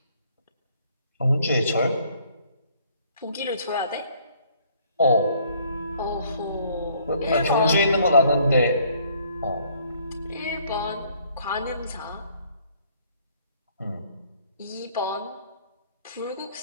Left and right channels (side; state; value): both; inverted; correlation -0.62